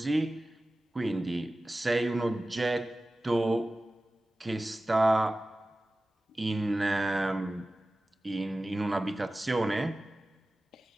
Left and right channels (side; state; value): both; normal; correlation 0.96